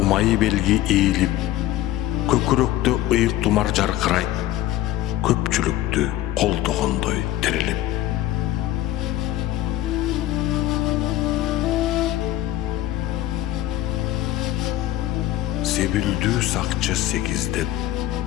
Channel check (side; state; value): right; quieter; 14.1 dB